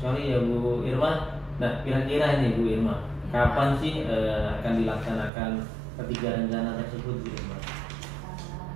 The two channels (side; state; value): left; drops out; at 5.3 s